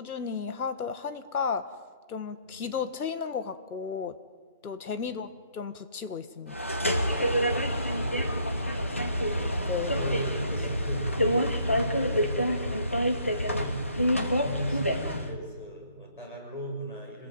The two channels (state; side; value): inverted; both; correlation -0.64